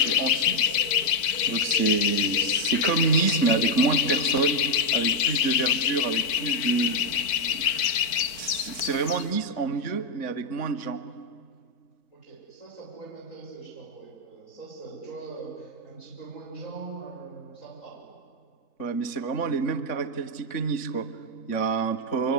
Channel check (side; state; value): right; late; 4.4 ms